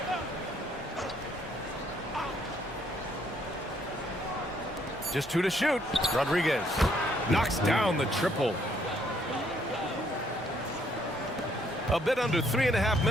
Just 2 to shoot. Rodriguez knocks down the triple. A bit under 3.5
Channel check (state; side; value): normal; both; correlation 0.68